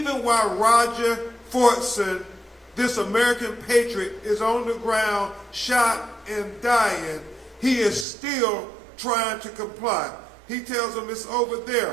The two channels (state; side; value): drops out; left; at 8.1 s